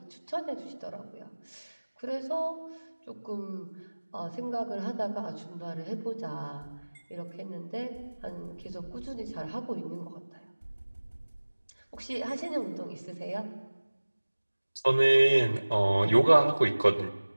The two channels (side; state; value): both; inverted; correlation -1.00